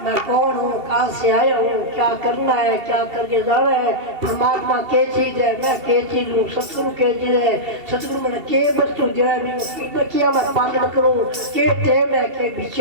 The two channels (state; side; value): late; left; 2.7 ms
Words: कौन हूँ कहाँ से आया हूँ क्या करना है क्या करके जाना है परमात्मा के चीज है मैं के चीज हूँ सतगुरु के चीज है सतगुरु मैंने के वस्तु जो है किया मैं पालन करूँ के टेम है के